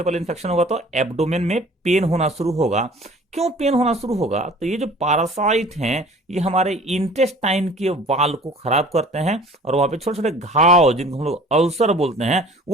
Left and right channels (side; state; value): both; normal; correlation 0.48